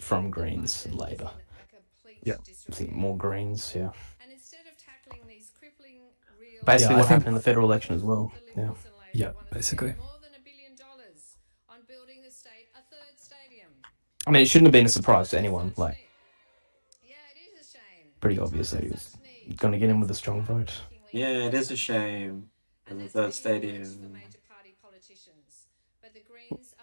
from Greens and Labor. Yeah. I think more Greens, yeah. Basically, what happened in the federal election as well. Yeah. Yeah, basically. I mean, it shouldn't have been a surprise to anyone. Like, pretty obvious that he was going to get in with a strong vote. Yeah, it is a shame. In the third stadium. But the Greens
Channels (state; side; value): inverted; both; correlation -1.00